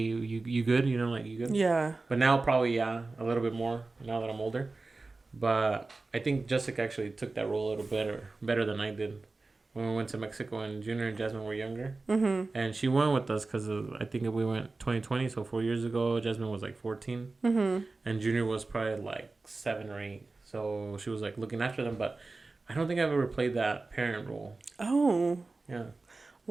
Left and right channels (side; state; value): left; quieter; 3.5 dB